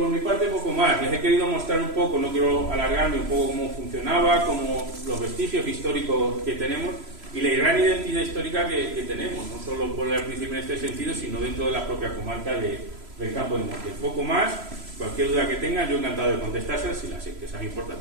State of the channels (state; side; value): late; left; 3.0 ms